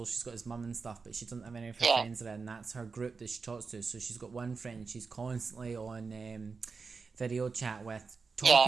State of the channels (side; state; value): left; quieter; 4.8 dB